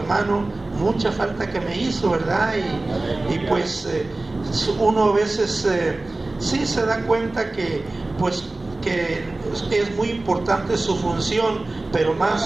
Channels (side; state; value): left; quieter; 3.0 dB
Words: mucha falta que me hizo, ¿verdad? Y pues uno a veces sí se da cuenta que pues que es muy importante su función, pero